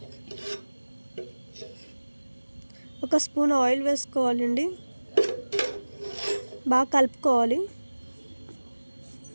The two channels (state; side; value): inverted; both; correlation -1.00